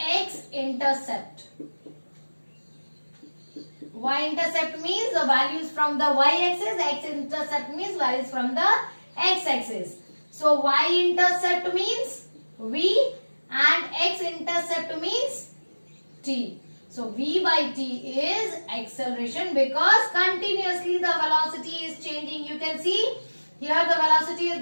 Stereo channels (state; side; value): inverted; both; correlation -1.00